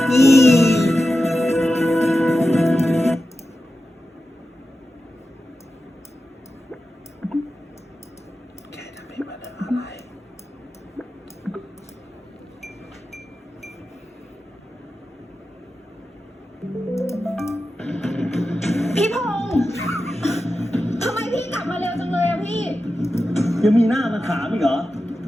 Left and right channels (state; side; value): normal; both; correlation 0.92